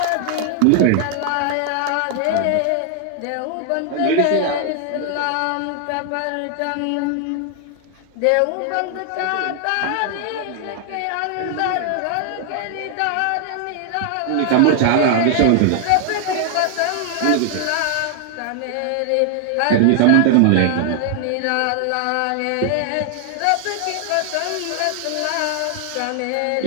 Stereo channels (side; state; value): both; different; correlation 0.00